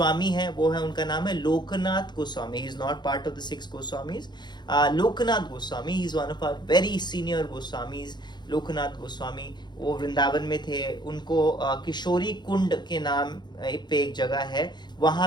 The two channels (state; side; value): late; right; 0.21 ms